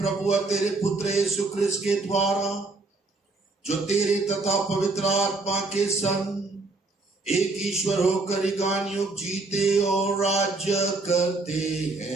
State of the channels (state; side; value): quieter; left; 3.5 dB